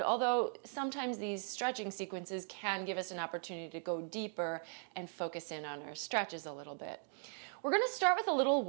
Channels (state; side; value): silent; left; 52 dB below the other